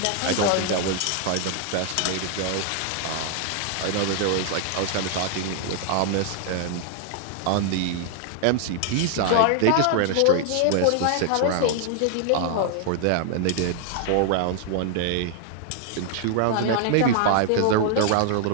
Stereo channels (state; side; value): different; both; correlation 0.00